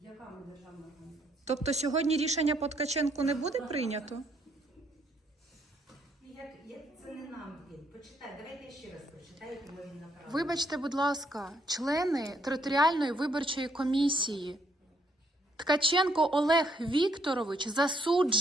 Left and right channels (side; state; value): both; normal; correlation 0.71